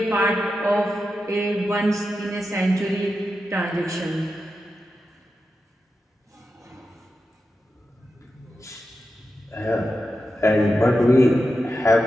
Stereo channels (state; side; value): normal; both; correlation 0.90